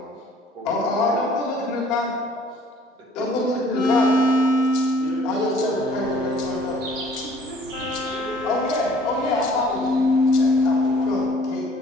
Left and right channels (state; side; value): normal; both; correlation 0.55